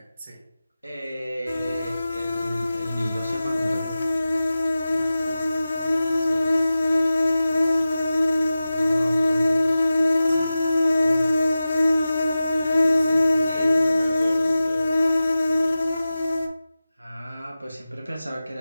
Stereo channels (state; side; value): inverted; both; correlation -0.95